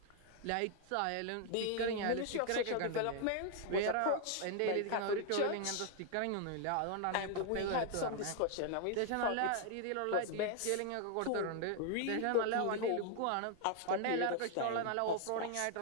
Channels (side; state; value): both; different; correlation 0.00